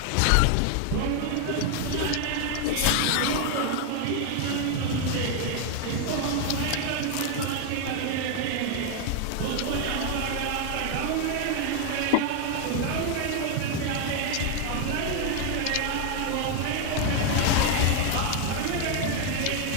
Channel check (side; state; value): both; different; correlation 0.00